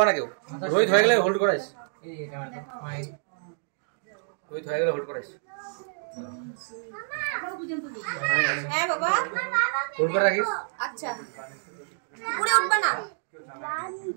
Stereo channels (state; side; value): silent; left; digital silence